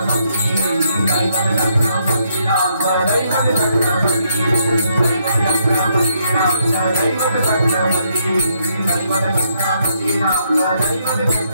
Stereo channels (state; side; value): inverted; both; correlation -0.74